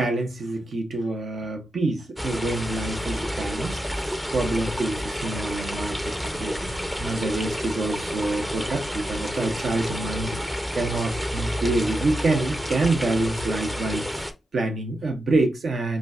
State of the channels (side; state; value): both; normal; correlation 0.87